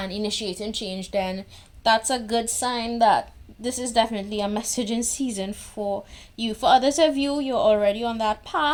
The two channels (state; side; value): identical; both; correlation 1.00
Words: initiating change, then that's a good sign that this is definitely a message in season for you. For others of you, you're already on that